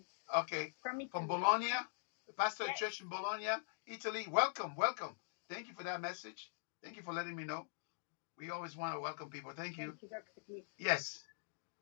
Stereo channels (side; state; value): right; silent; digital silence